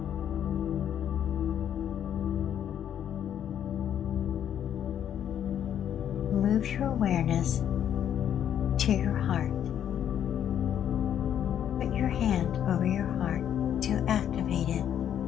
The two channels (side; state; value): right; quieter; 9.8 dB